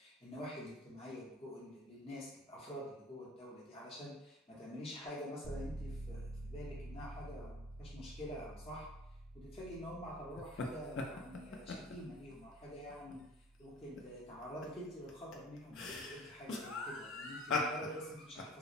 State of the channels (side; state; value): both; normal; correlation 0.47